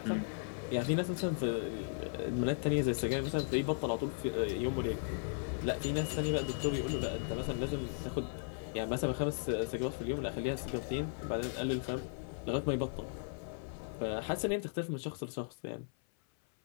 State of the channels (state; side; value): silent; right; 53 dB below the other